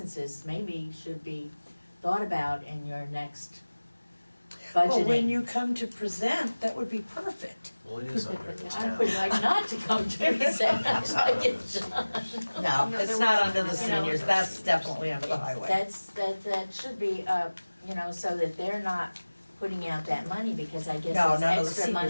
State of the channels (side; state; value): both; inverted; correlation -1.00